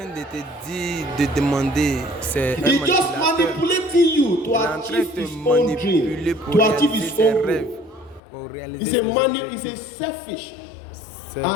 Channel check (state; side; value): drops out; right; at 8.2 s